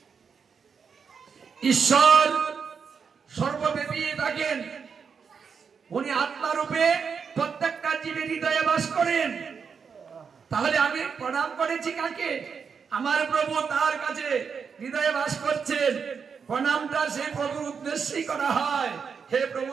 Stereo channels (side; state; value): left; quieter; 6.1 dB